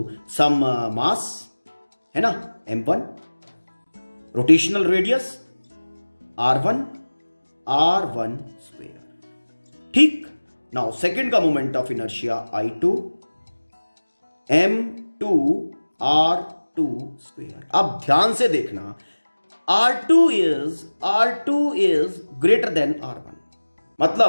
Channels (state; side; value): inverted; both; correlation -1.00